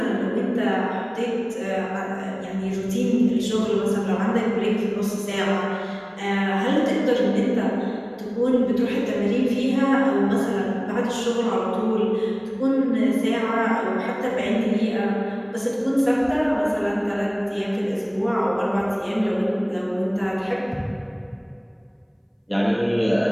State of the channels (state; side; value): identical; both; correlation 1.00